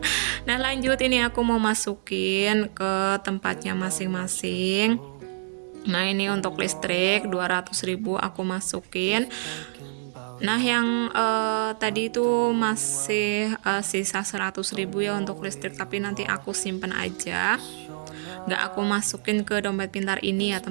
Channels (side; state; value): left; silent; digital silence